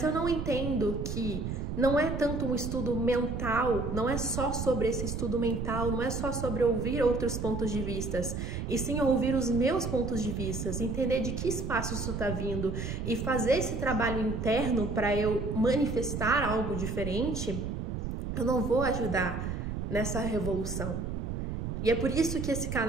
eu não entendo que não é tanto um estudo mental, não é só sobre esse estudo mental, não é só sobre ouvir outros pontos de vista, e sim ouvir os meus pontos de vista, entender de que espaço isso está vindo e fazer esse trabalho interno para eu manifestar algo diferente, eu não vou ajudar nessa revolução. E é por isso que esse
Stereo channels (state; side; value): noise; right; rumble, 4 dB below the sound